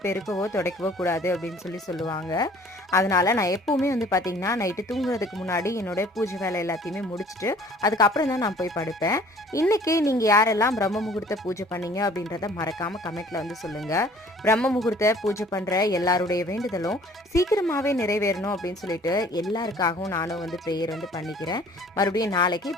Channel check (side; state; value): both; normal; correlation 0.53